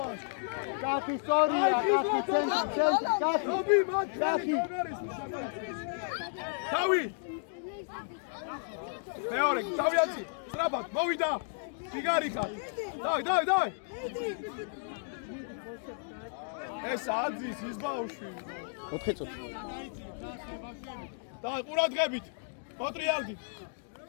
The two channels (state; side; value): silent; right; digital silence